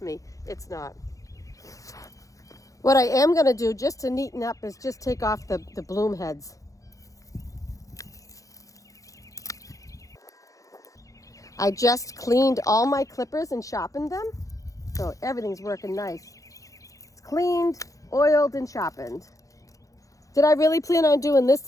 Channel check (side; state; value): right; late; 0.16 ms